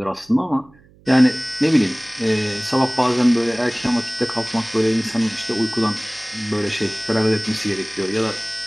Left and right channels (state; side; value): noise; right; hum, 28 dB below the sound